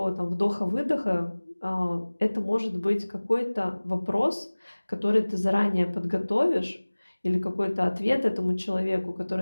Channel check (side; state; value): both; inverted; correlation -1.00